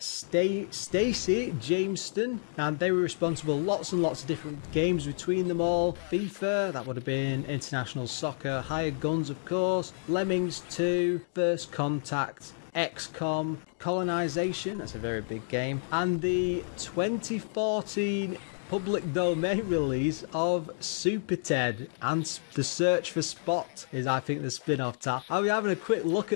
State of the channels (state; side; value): silent; right; digital silence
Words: Jameston, and they were responsible lots and lots of different games between them all. FIFA, that would have been International Soccer, Hired Guns of course, Lemmings 2, First Contact, XCOM, Colonization, that's a very big game, and the 2014 public domain release of Super Ted and The Search for Spot is, I think, the spin-off tap. I'll be having a quick look